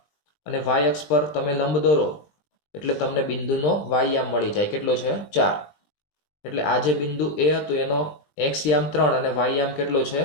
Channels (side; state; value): right; late; 20 ms